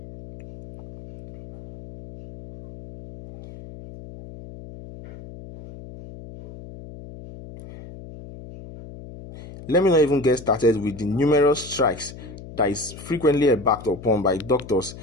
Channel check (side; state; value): left; noise; hum, 15 dB below the sound